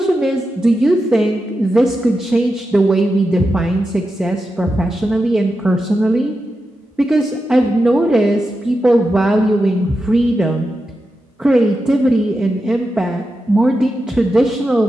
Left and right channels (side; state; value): both; normal; correlation 0.89